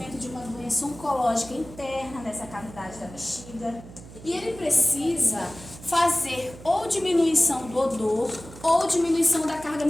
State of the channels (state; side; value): noise; right; hum, 17 dB below the sound